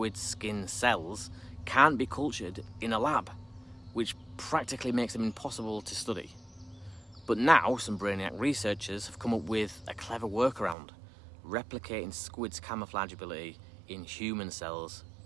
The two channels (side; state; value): left; drops out; at 10.8 s